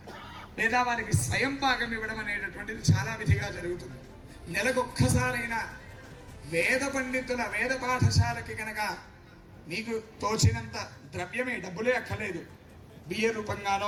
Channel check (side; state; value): both; identical; correlation 1.00